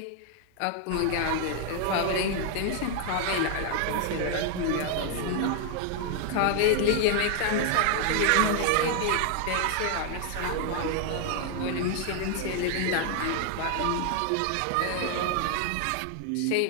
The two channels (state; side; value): different; both; correlation 0.00